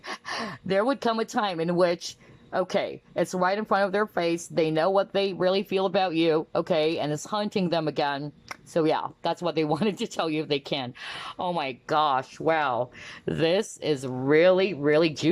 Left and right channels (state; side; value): identical; both; correlation 1.00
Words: there would come a time in which, okay, it's right in front of their face. They know what they really feel about you, okay, and it's haunting them again. So yeah, that's what they wanted to tell you if they can. Oh my gosh, wow. This is really, really